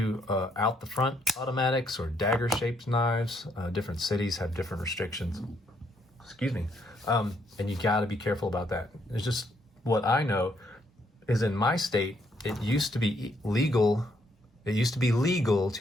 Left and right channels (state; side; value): normal; both; correlation 0.72